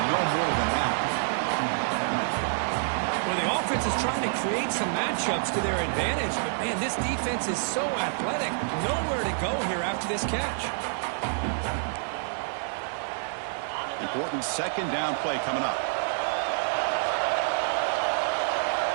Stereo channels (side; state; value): left; silent; 59 dB below the other